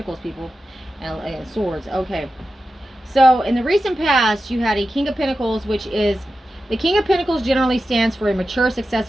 people. And Swords. Okay. So, in the recent past, you had a King of Pentacles, which is... The King of Pentacles generally stands for a mature,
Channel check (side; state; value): both; normal; correlation 0.92